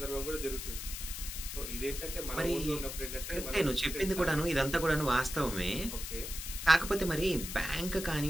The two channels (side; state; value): left; noise; hiss, 7 dB below the sound